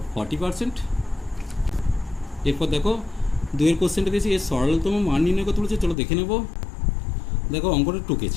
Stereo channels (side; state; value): right; drops out; at 6.0 s